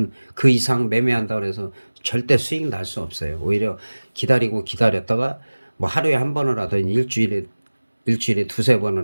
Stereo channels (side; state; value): both; inverted; correlation -1.00